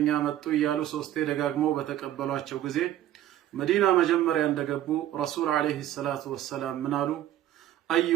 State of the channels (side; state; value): left; quieter; 12.7 dB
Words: መጡ እያሉ ሶስቴ ደጋግመው በተቀበሏቸው ጊዜ መዲና መጀመሪያ እንደገቡ ረሱል አለይሂ ሰላቱ ወሰላም ምን አሉ?